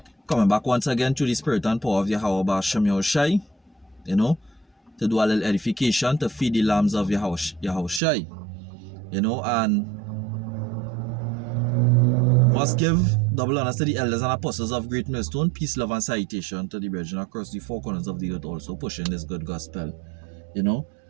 Coming back once again to the spirit and power of Yahweh Shem Yahushai, to do a little edification, to feed the lambs of Yahushai, and must give double honors to the elders and apostles of Great Millstone, peace, love, and salutation to the brethren across the four corners of the earth also pushing this good gospel, and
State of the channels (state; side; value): drops out; left; at 8.0 s